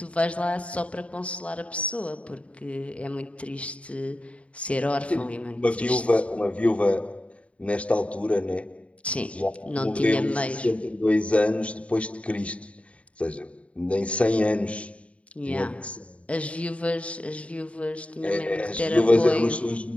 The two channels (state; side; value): late; right; 0.063 ms